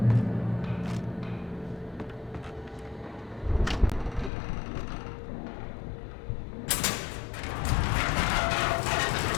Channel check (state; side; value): drops out; right; at 4.3 s